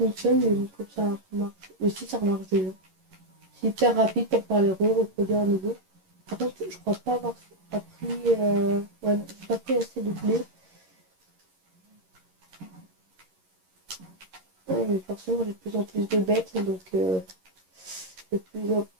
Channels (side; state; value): left; late; 11 ms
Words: mais comme ça marche. Aussi ça marche déjà. C'est hyper rapide pour faire les reproduire à nouveau. Par contre, je crois pas avoir appris... ouais, j'ai pas pris assez de blé. Ouais, mais forcément, j'ai de plus en plus de bêtes, donc j'ai de